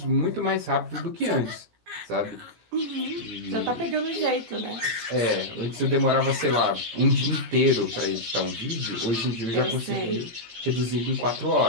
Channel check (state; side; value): late; left; 17 ms